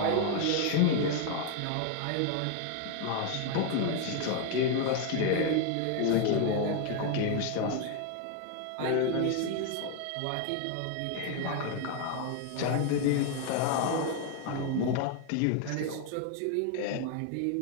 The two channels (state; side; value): different; both; correlation 0.01